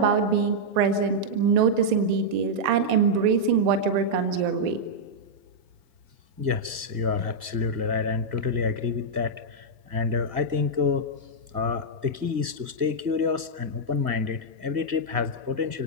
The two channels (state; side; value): late; left; 1.8 ms